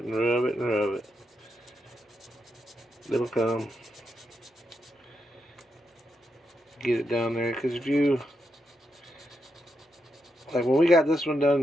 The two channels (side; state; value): both; normal; correlation 0.83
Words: and rub it and rub it. It'll come. Get it down there, because if you, like when we got this one